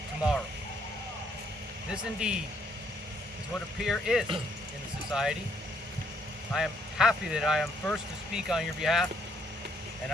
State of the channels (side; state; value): both; normal; correlation 0.70